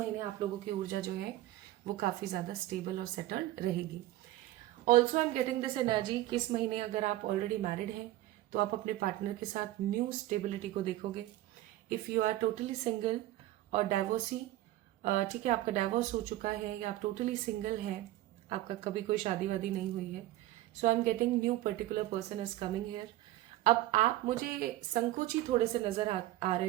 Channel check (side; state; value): left; quieter; 15.7 dB